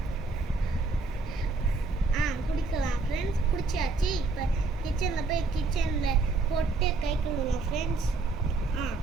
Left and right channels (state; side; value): quieter; left; 3.6 dB